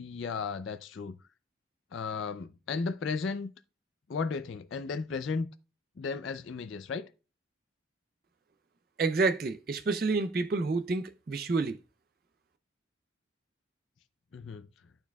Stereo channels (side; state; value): both; normal; correlation 0.51